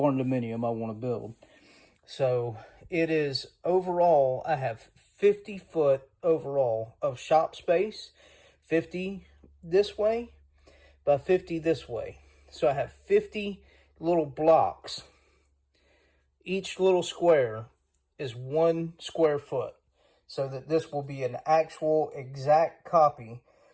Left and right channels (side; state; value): both; identical; correlation 1.00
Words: dominium I want to build. So it is overall, I have 50 foot overall of shop space, 50 this way by 50 this way. So I have 50 little blocks. Each little square is 1 square foot, so that this will be an actual exact copy